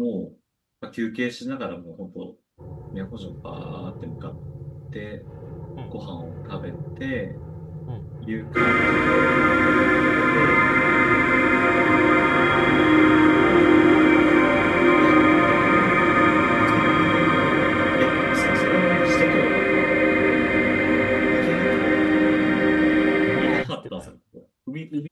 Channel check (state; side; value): identical; both; correlation 1.00